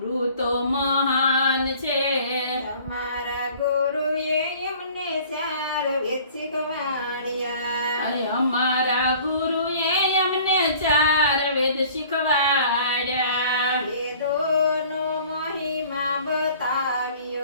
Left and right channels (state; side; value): inverted; both; correlation -0.50